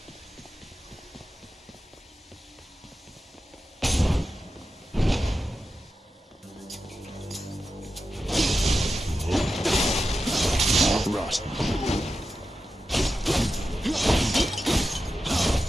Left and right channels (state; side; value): normal; both; correlation 0.91